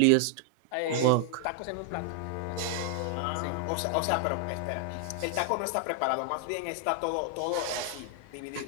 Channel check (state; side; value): different; both; correlation 0.00